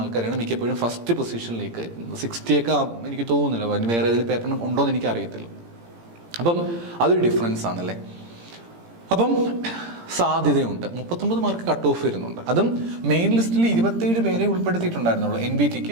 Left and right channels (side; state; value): left; late; 17 ms